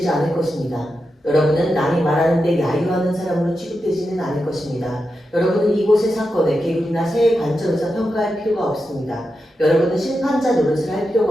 않을 것입니다. 여러분은 남이 말하는데 야유하는 사람으로 취급되지는 않을 것입니다. 여러분은 이곳의 사건에 계급이나 세의 관점에서 평가할 필요가 없습니다. 여러분은 심판자 노릇을 할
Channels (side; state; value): both; normal; correlation 0.88